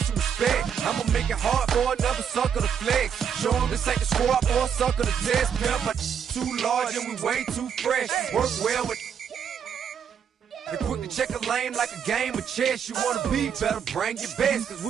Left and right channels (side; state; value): left; quieter; 7.7 dB